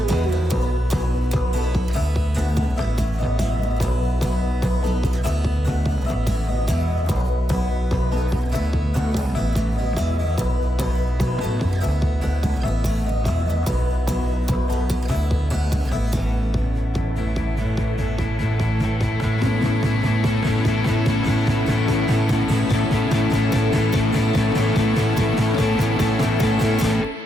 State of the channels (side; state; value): both; normal; correlation 0.84